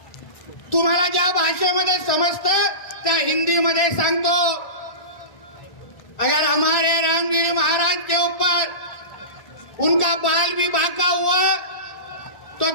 तुम्हाला ज्या भाषेमध्ये समजतं त्या हिंदीमध्ये सांगतो. अगर हमारे रामगिरी महाराज के ऊपर उनका बाल भी बांका हुआ तो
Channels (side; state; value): right; late; 1.7 ms